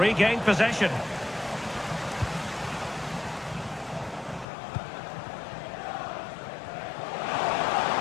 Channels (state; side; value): drops out; right; at 4.5 s